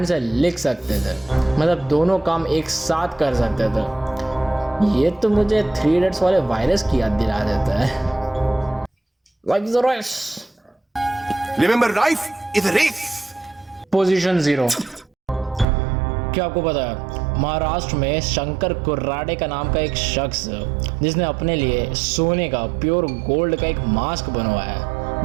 से लिख सकते थे, मतलब दोनों काम एक साथ कर सकते थे। ये तो मुझे 3 इडियट्स वाले वायरस की याद दिला देता है। Like the race. Remember, life is a race. Position 0। क्या आपको पता है महाराष्ट्र में शंकर कुर्राडे का नाम का एक शख्स जिसने अपने लिए सोने का प्योर गोल्ड का एक मास्क बनवाया है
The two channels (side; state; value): left; drops out; at 15.7 s